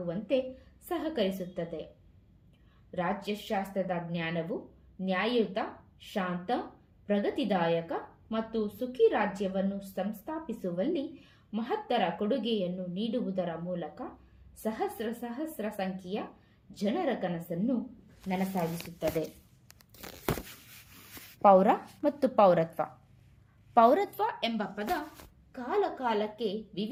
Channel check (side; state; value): both; identical; correlation 1.00